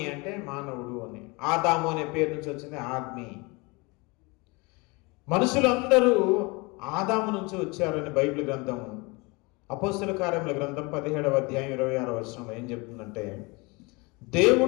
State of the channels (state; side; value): quieter; right; 26.9 dB